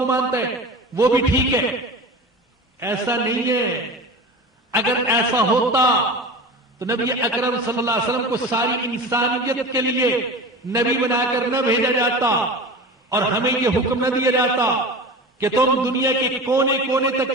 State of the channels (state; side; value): normal; both; correlation 0.32